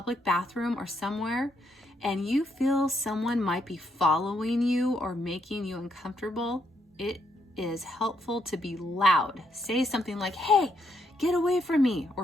bathroom or somewhere, and you feel someone might be following you or making you uncomfortable, it is helpful to be loud. Say something like, hey, get away from me,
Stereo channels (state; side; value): normal; both; correlation 0.75